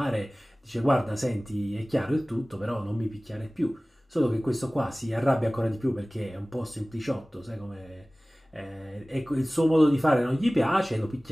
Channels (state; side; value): normal; both; correlation 0.98